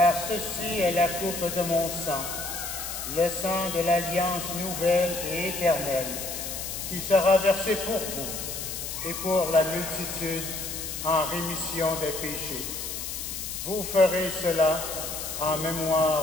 ceci est la coupe de mon sang, le sang de l'alliance nouvelle et éternelle, qui sera versé pour vous et pour la multitude en rémission des péchés. Vous ferez cela en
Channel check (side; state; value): left; noise; hiss, 6 dB below the sound